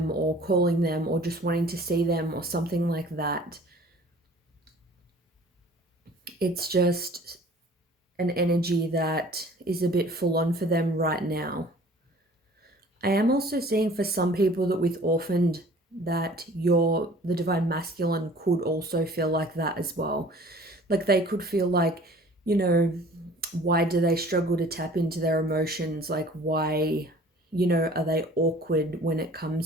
or calling them or just wanting to see them or something like that, it's just an energy that is a bit full on for them right now. I am also seeing for some people that with orphaned, that the divine masculine could also feel like that as well. Like they could feel like, you know, why do they struggle to tap into their emotions? Like why, you know, are they awkward when it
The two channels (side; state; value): both; normal; correlation 0.49